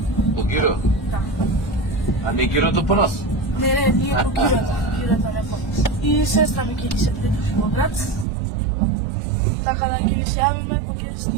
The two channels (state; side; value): drops out; left; at 8.2 s